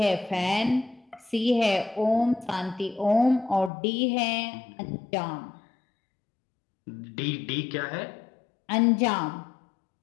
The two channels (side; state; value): right; drops out; at 3.7 s